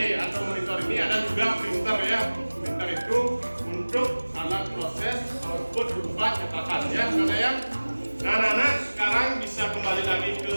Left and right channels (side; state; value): both; inverted; correlation -1.00